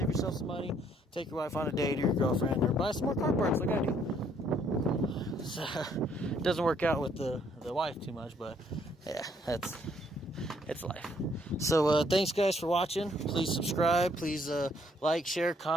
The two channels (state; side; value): normal; both; correlation 0.67